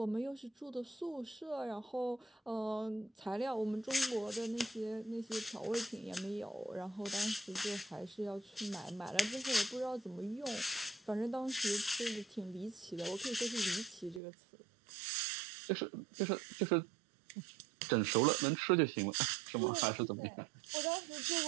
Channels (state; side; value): drops out; left; at 14.2 s